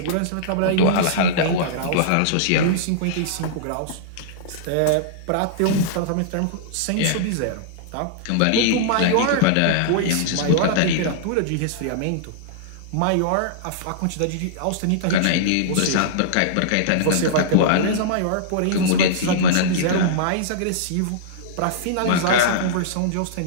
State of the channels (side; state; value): both; different; correlation -0.02